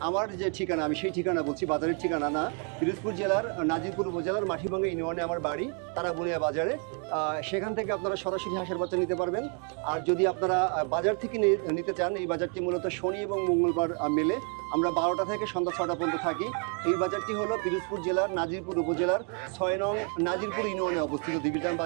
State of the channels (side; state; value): left; quieter; 39.9 dB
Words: আমার যে ঠিকানা, আমি সেই ঠিকানা বলছি, বাজারের ঠিকানা না। পিরোজপুর জেলার নাজিরপুর উপজেলার মাঠিভাঙ্গা ইউনিয়নে আমার বাড়ি, তারাবুনিয়া বাজারে। সেখান থেকে আপনারা সরাসরি হাঁসের বাচ্চা নিতে পারবেন। আর যদি আপনারা বাজার থেকে নিতে চান, এই বাজারটি মূলত শনি এবং মঙ্গলবার মেলে। আমরা 12টা থেকে সন্ধ্যা 6টা পর্যন্ত থাকি। এই বাজারটি হলো পিরোজপুর জেলার নাজিরপুর উপজেলার 6 নং নাজিরপুর ইউনিয়নে অবস্থিত দিঘিরজান